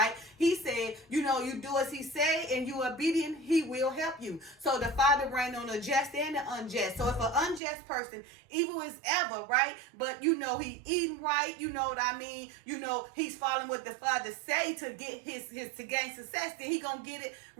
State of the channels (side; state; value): left; drops out; at 7.6 s